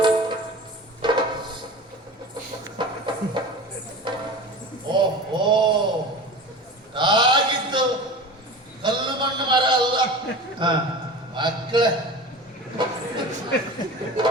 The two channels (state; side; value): normal; both; correlation 0.34